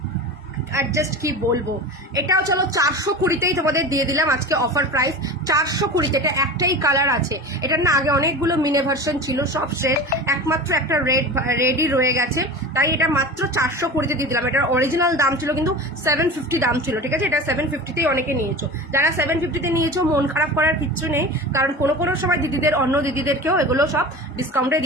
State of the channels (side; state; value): both; normal; correlation 0.32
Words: আর জাস্ট কি বলবো, এটাও চলো 420-তেই তোমাদের দিয়ে দিলাম আজকে অফার প্রাইস, 420। এটা একটাই কালার আছে, এটার না আগে অনেকগুলো মিনে ভার্সন ছিল, সব শেষ, একমাত্র একটা রেডই রয়ে গেছে, তাই এটা মাত্র 420-তে দিয়ে দিলাম। এটার অরিজিনাল দাম ছিল কিন্তু 750 দাম ছিল। ঠিক আছে, এটা 750-তেই অনেকে নিয়েছো। যারা 750-তে নিয়েছো মন খারাপ করার কিচ্ছু নেই, কারণ কোনো সময় দিদিদের, অন্য দিদিদেরকেও এগুলো সব ডিসকাউন্টে